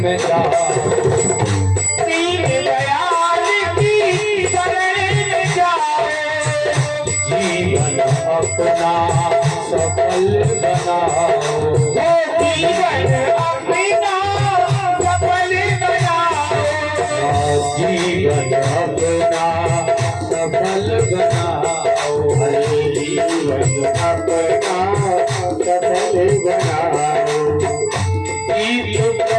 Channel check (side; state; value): both; identical; correlation 1.00